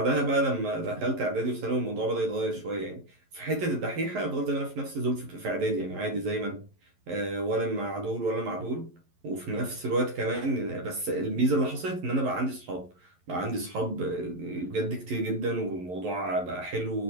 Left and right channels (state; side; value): late; left; 11 ms